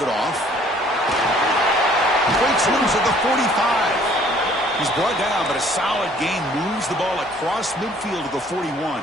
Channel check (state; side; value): normal; both; correlation 0.57